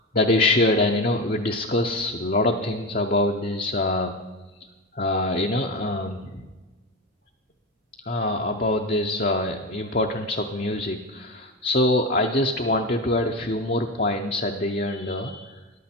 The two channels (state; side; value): normal; both; correlation 0.20